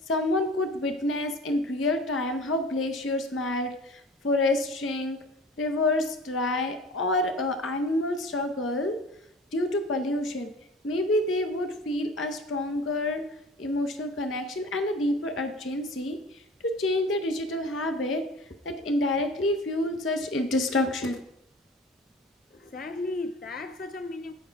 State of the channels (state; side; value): normal; both; correlation 0.41